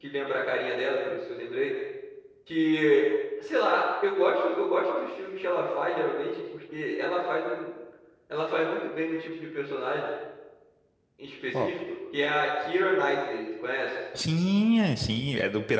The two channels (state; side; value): identical; both; correlation 1.00